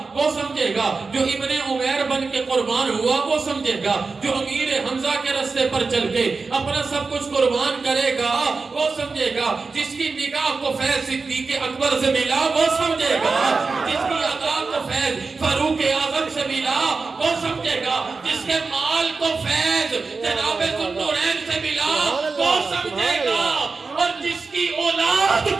وہ سمجھے گا، جو ابن عمیر بن کے قربان ہوا وہ سمجھے گا، جو امیر حمزہ کے راستے پر چل کے اپنا سب کچھ قربان کرے گا وہ سمجھے گا، جس کی کی نگاہ کو فیض صدیق اکبر سے ملا وہ سمجھے گا، جس کی ادا کو فیض فاروق اعظم سے ملا وہ سمجھے گا، جس کے مال کو فیض جناب ذوالنورین سے ملا وہ سمجھے گا، اور جس کی اولاد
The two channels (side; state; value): left; quieter; 4.3 dB